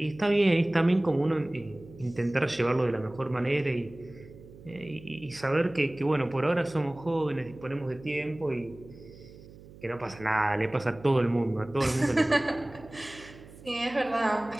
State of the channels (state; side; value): noise; right; hum, 20 dB below the sound